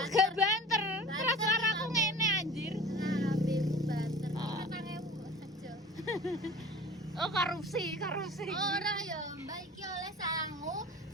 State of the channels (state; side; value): normal; both; correlation 0.40